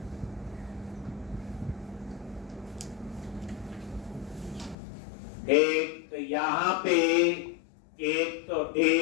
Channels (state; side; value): drops out; right; at 4.8 s